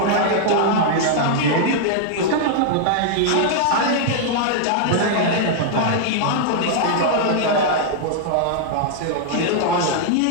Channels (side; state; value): both; different; correlation -0.01